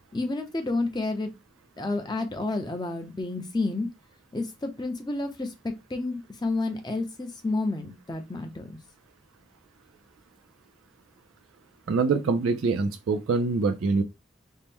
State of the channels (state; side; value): normal; both; correlation 0.65